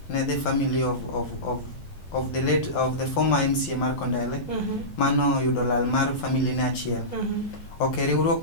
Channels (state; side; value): late; right; 12 ms